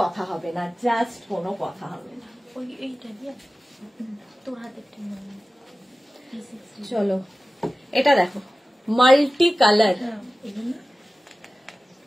কথা হবে না, জাস্ট কোনো কথা হবে না। ওই এইটা দিয়ে তোর হাতে একটা চলো এটা দেখো, মাল্টি কালার,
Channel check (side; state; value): both; normal; correlation 0.96